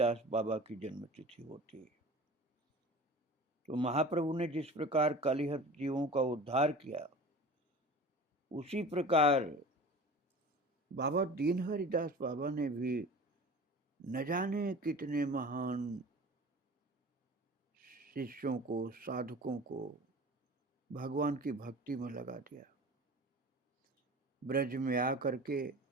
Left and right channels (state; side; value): normal; both; correlation 0.38